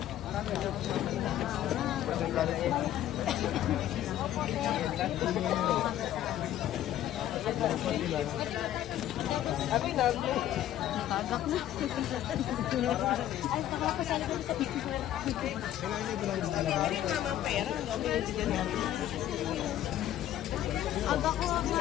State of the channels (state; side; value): quieter; right; 12.3 dB